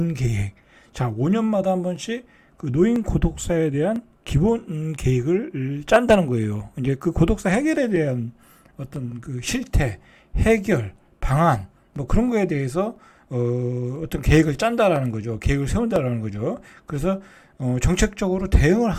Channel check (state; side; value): identical; both; correlation 1.00